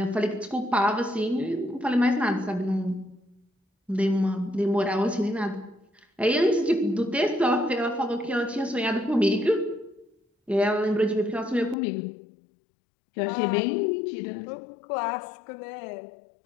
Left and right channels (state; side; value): drops out; right; at 11.8 s